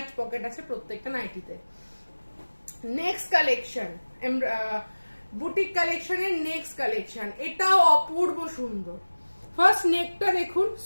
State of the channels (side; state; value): both; inverted; correlation -1.00